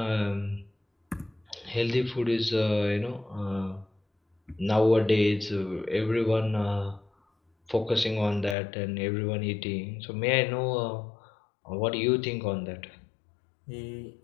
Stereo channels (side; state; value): right; drops out; at 8.6 s